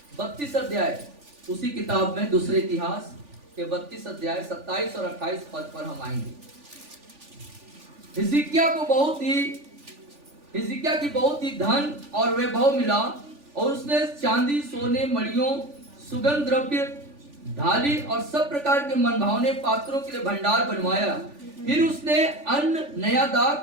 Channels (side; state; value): left; late; 3.4 ms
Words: 32 अध्याय उसी किताब में, दूसरे इतिहास के 32 अध्याय 27 और 28 पद पर हम आएंगे। हिजकिय्याह की बहुत ही धन और वैभव मिला, और उसने चांदी, सोने, मणियों, सुगंध द्रव्य, ढाली और सब प्रकार के मनभावने पात्रों के लिए भंडार बनवाया। फिर उसने अन्न, नया